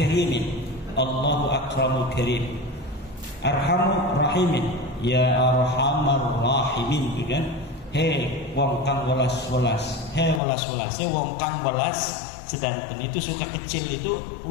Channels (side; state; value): right; drops out; at 10.4 s